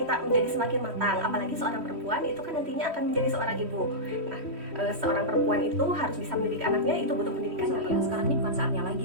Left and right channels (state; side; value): late; left; 3.1 ms